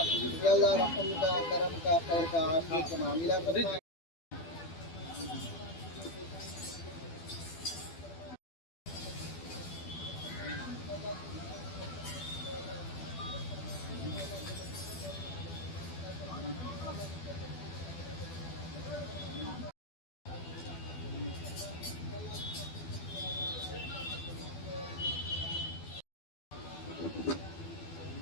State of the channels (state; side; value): late; right; 12 ms